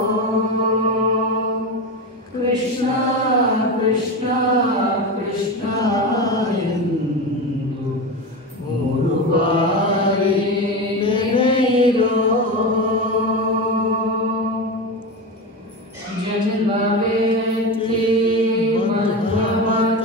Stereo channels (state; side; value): normal; both; correlation 0.21